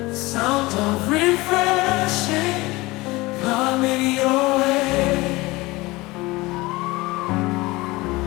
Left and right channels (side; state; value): right; quieter; 21.5 dB